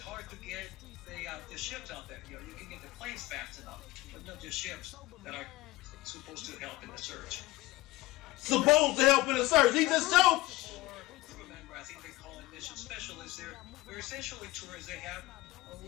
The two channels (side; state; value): right; quieter; 18.9 dB